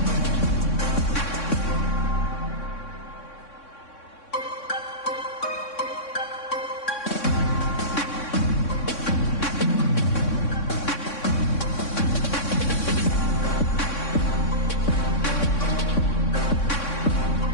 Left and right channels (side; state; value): right; late; 3.6 ms